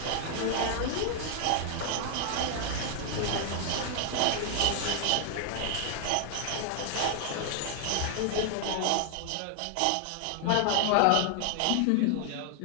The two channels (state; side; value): different; both; correlation 0.00